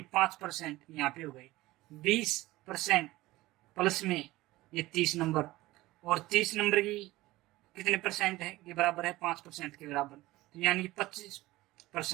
5% यहाँ पे हो गए। 20% प्लस में ये 30 नंबर, और 30 नंबर की कितने परसेंट है के बराबर है, 5% के बराबर, तो यानी कि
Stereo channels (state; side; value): quieter; left; 18.4 dB